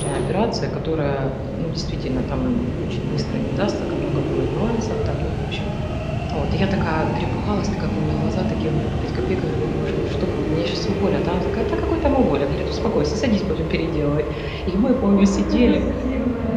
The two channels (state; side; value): identical; both; correlation 1.00